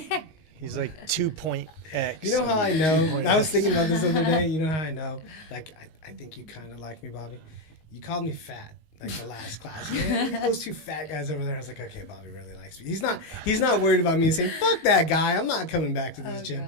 2.x. You know how I know? I was thinking about this the other day. You know how I know? Like, I think you kind of like me, Bobby. You called me fat, like the last class. Yeah, look at those 2 fat guys over there. I was like, okay, Bobby really likes me. He's not worried about me saying, fuck that guy. I'm not coming back to this Oh, gym.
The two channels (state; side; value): late; right; 19 ms